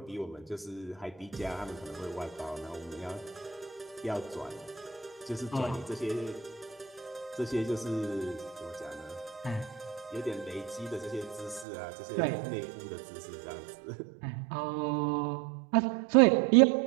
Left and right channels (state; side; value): drops out; left; at 11.7 s